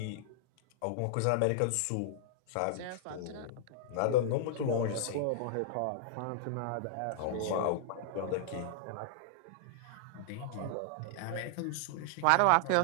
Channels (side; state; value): both; different; correlation -0.01